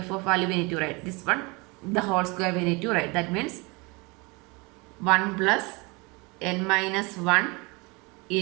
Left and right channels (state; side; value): quieter; left; 27.2 dB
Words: value we need to write. This one the whole square we need to write. That means 1 plus n minus 1